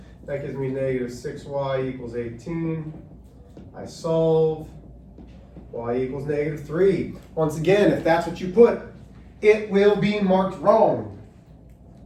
That gives me negative 6y equals 18. I solve. Y equals negative 3. Once again, if that's what you put, it will be marked wrong.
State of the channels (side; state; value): both; identical; correlation 1.00